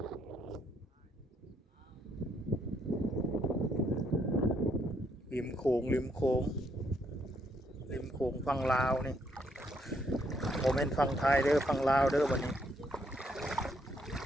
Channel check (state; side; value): normal; both; correlation 0.73